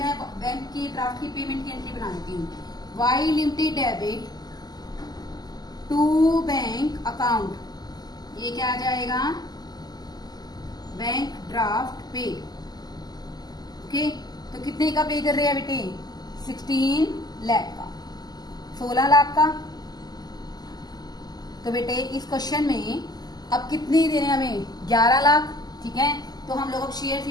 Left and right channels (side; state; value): right; late; 0.20 ms